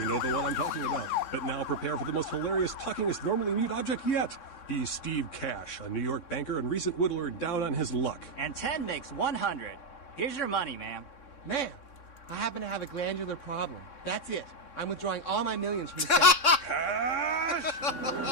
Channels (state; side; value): late; right; 3.6 ms